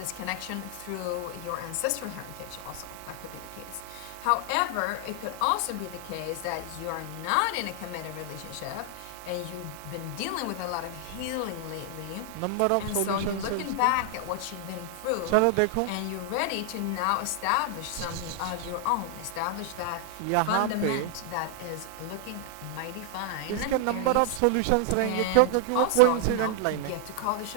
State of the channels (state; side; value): different; both; correlation 0.00